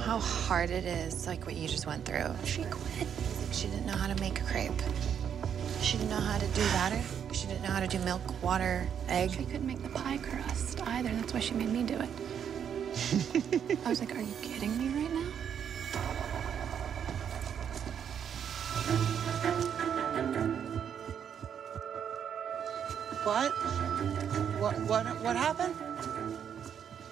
hard it is, like what you just went through. She quit. She didn't know how to make a crepe. She didn't know how to do batter. She didn't know how to do milk, water, egg. She couldn't make the pie crust either. That's why she made me do it. I was like, are you kidding me right now? What happened?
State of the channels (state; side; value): quieter; left; 8.3 dB